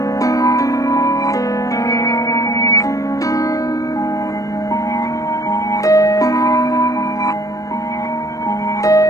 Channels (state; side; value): late; right; 0.16 ms